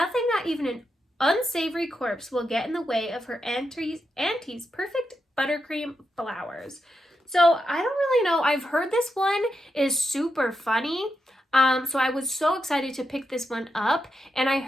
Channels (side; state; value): both; normal; correlation 0.86